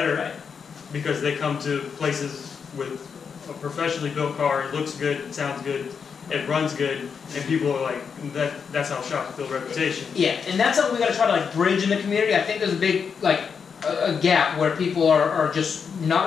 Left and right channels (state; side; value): quieter; right; 6.3 dB